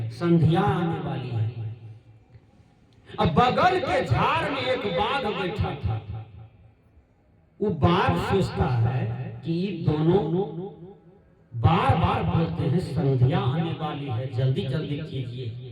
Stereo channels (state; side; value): identical; both; correlation 1.00